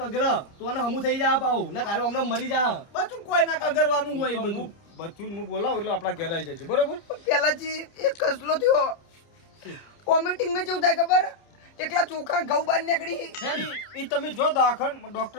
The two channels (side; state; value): right; late; 30 ms